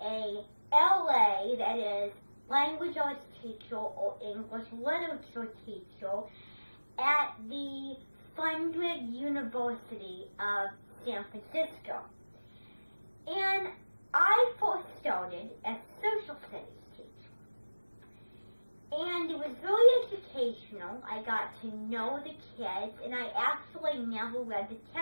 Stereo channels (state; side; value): inverted; both; correlation -1.00